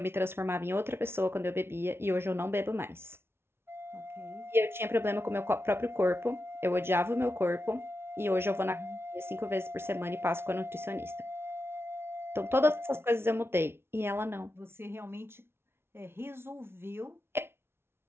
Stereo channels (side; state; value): left; late; 0.12 ms